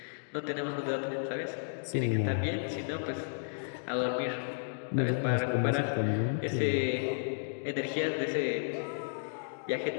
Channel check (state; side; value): silent; right; digital silence